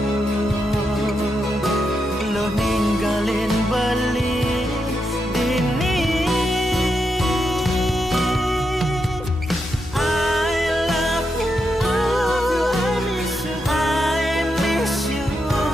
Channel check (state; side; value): normal; both; correlation 0.84